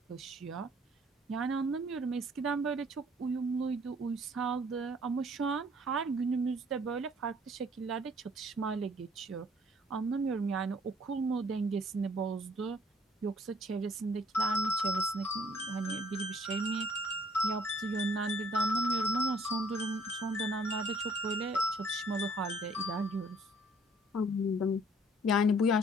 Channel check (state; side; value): normal; both; correlation 0.58